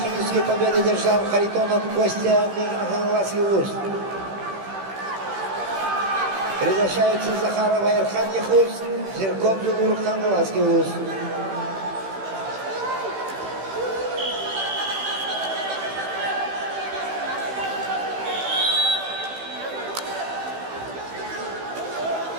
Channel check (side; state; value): left; late; 15 ms